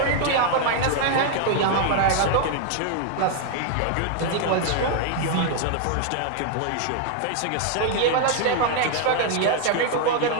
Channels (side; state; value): both; different; correlation 0.00